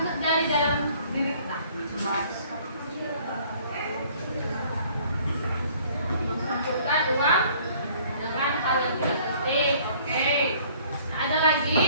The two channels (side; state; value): both; inverted; correlation -0.57